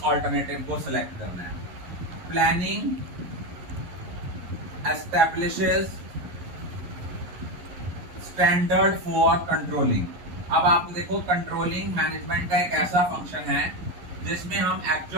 ऑल्टरनेटिव को सिलेक्ट करना है। Planning establishes standard for controlling. अब आप देखो कंट्रोलिंग मैनेजमेंट का एक ऐसा फंक्शन है जिसमें हम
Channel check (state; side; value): late; left; 11 ms